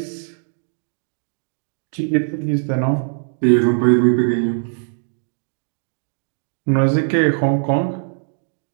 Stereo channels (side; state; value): left; silent; digital silence